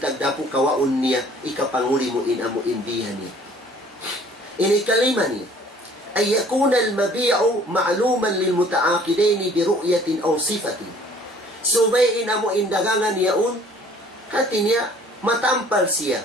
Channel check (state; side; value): normal; both; correlation 0.54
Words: tagdapu kawaon niya ikapanguli mo in amo indihan niya. Ini kalima niya. أن يكون المبيع معلوما للمتعاقدين برؤية أو صفة. Subay amo indagangan yaun katinya matampal siya